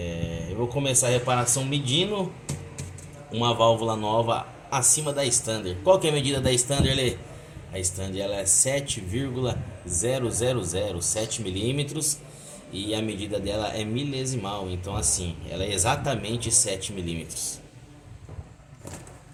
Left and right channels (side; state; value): both; identical; correlation 1.00